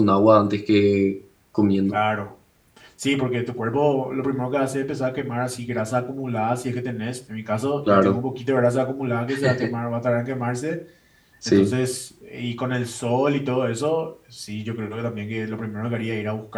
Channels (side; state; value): both; identical; correlation 1.00